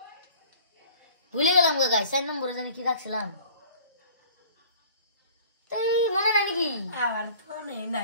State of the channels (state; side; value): inverted; both; correlation -0.48